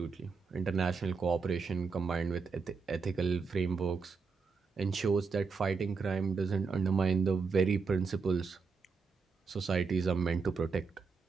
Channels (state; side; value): quieter; left; 5.0 dB